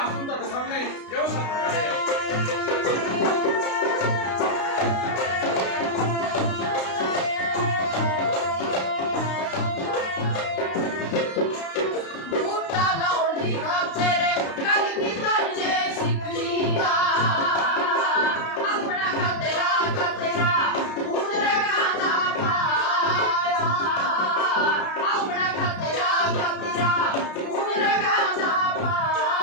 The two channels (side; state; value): right; late; 32 ms